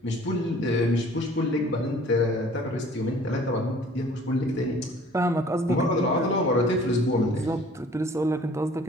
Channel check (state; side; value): normal; both; correlation 0.52